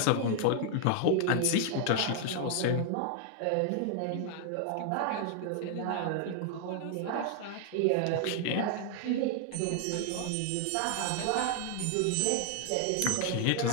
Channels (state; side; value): different; both; correlation 0.00